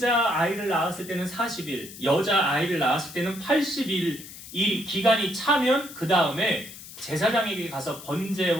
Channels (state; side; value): noise; left; hiss, 15 dB below the sound